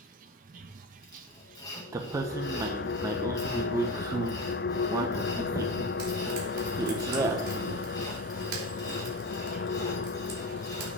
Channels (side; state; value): both; normal; correlation 0.25